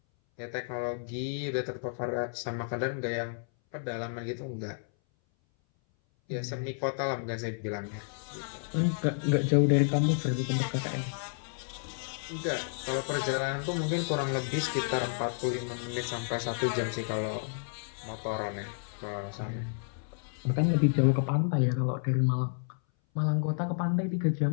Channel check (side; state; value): right; silent; 57 dB below the other